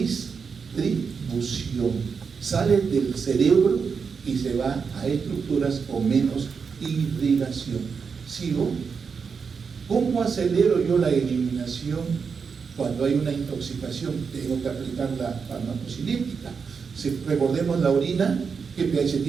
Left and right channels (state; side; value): quieter; left; 5.7 dB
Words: Sale del cerebro y se va a estructuras con menos irrigación. ¿Sigo? ¿Cómo acelero yo la eliminación cuando hay una intoxicación? Tengo que aplicar la farmacocinética. Si recordemos la orina, ¿qué pH